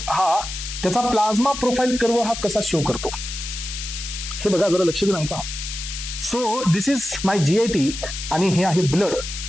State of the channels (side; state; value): left; noise; hiss, 7 dB below the sound